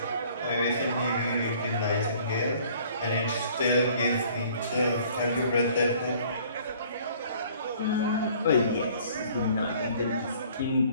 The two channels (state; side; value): inverted; both; correlation -0.55